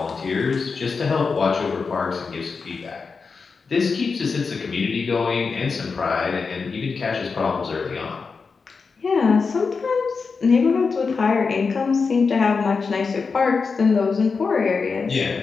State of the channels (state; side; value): quieter; right; 4.9 dB